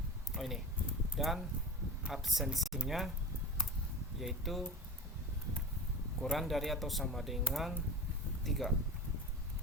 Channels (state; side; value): normal; both; correlation 0.33